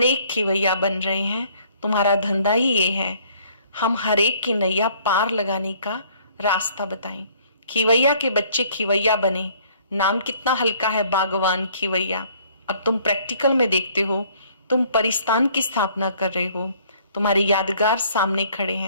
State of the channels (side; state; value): both; inverted; correlation -0.59